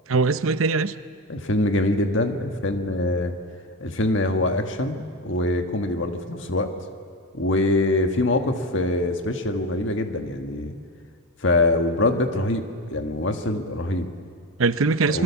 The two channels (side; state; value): both; normal; correlation 0.20